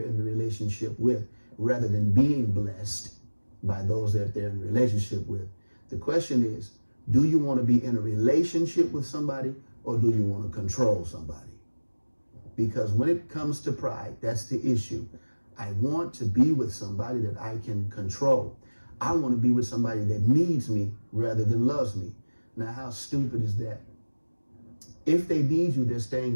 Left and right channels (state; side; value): inverted; both; correlation -1.00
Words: the relationship with, rather than being blessed by those that they're in a relationship with. The question is, do you want to be in a relationship with somebody, or do you want to control somebody? Because when it comes to pride, that's the issue. I want to be with somebody that I can control. I want to be with somebody that needs me rather than loves me. Now, how stupid is that? If they need you, they're